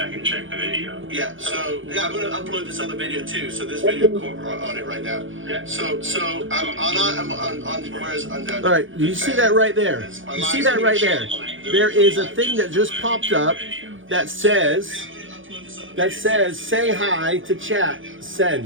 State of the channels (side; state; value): left; late; 0.57 ms